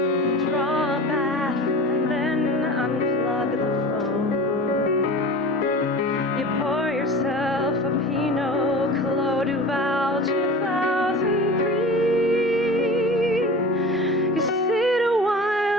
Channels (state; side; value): normal; both; correlation 0.35